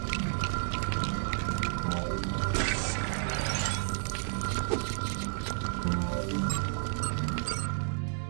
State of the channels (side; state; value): left; silent; digital silence